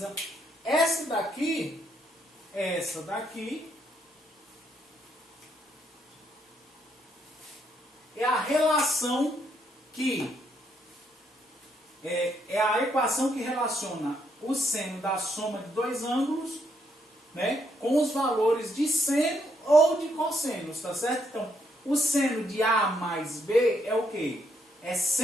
Essa daqui é a relação que é a equação que relaciona o seno da soma de dois ângulos, né, com os valores de seno ou de cossenos, tá certo? Então, o seno de A mais B é o quê? É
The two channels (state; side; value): normal; both; correlation 0.75